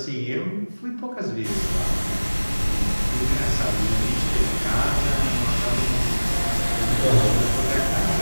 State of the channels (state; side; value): inverted; both; correlation -1.00